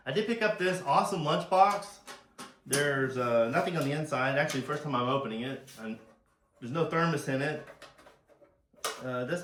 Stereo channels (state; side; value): identical; both; correlation 1.00